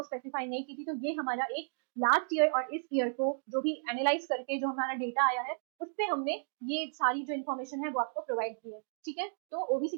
स्पेसिफाई नहीं की थी। तो ये हमारा एक लास्ट ईयर और इस ईयर को जो भी एनालाइज करके जो हमारा डेटा आया है उससे हमने ये सारी जो इन्फॉर्मेशन है वो आपको प्रोवाइड की है। ठीक है, तो ओबीसी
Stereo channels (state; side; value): silent; left; digital silence